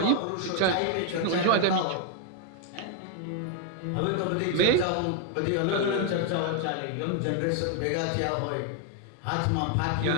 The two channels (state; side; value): different; both; correlation 0.00